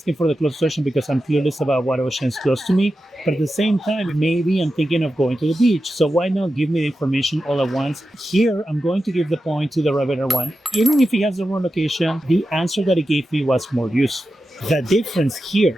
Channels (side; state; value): both; normal; correlation 0.91